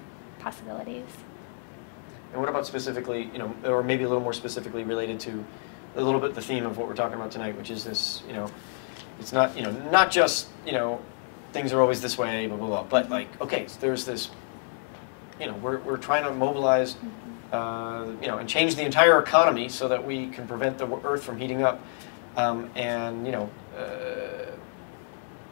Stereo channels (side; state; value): right; silent; 59 dB below the other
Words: possibilities. And what about specifically, you know, or maybe a little more specifically related to a little bit the theme of what we're talking about tonight, which is this, you know, it's not, you know, not just, you know, things are always this way, blah, blah, blah, but like, okay, so there's this, you know, we're trying to mobilize, you know, and change the entire economy so that we can prevent the earth from heating up. And, you know,